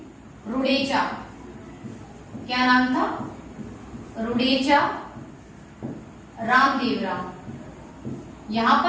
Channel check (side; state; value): both; identical; correlation 1.00